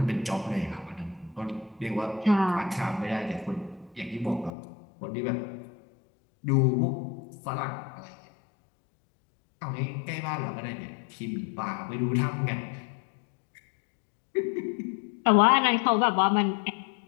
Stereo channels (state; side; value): drops out; right; at 4.5 s